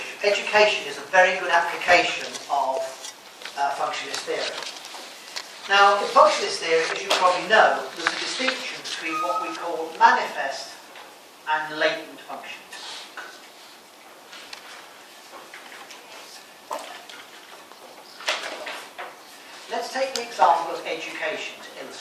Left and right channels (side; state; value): both; identical; correlation 1.00